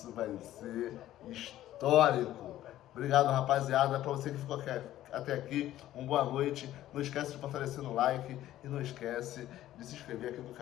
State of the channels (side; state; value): right; quieter; 13.6 dB